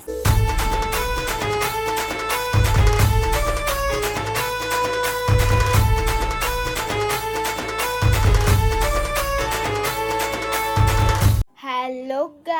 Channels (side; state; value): both; identical; correlation 1.00